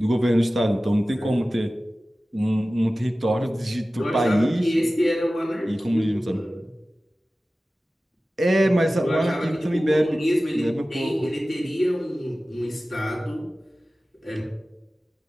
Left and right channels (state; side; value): normal; both; correlation 0.96